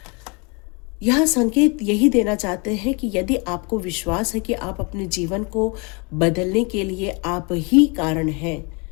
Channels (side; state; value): right; quieter; 31.1 dB